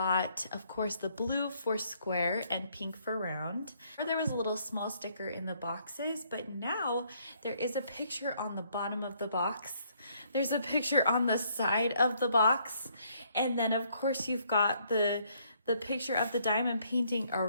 of course, the blue for square and pink for round. There was a little small sticker in the boxes, but now there is a picture on the bottom of the box. There's a picture on the side of the box, and then of course you've got the picture of the diamond painting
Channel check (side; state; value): both; inverted; correlation -0.68